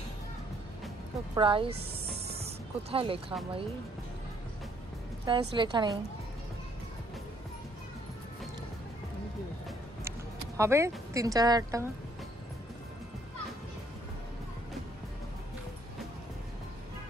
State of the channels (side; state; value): both; normal; correlation 0.66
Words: তো প্রাইস কোথায় লেখা ভাই? প্রাইস লেখা নেই। হবে 3-4 হাজার টাকা।